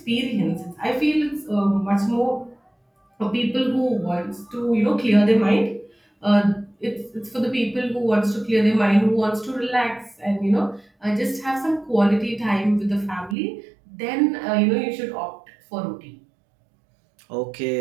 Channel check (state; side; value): drops out; left; at 13.4 s